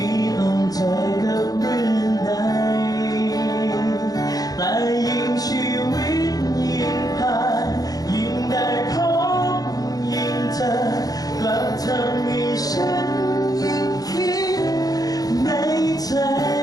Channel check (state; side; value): late; right; 0.18 ms